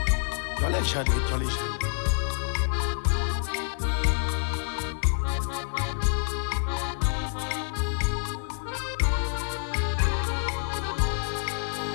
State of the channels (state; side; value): silent; right; digital silence